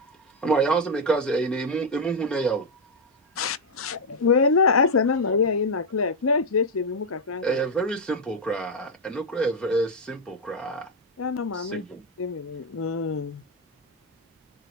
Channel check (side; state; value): both; normal; correlation 0.02